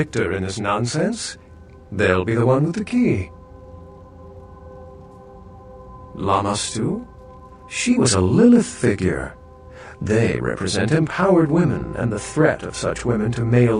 in this nonsense. They'll be the one with the key. Lamastu? She was a Lilith figure. They represent empowered women and the threat of such women to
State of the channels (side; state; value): both; identical; correlation 1.00